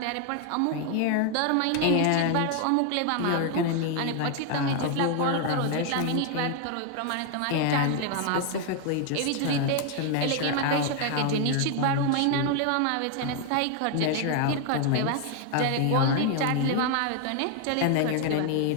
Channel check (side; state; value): both; different; correlation 0.00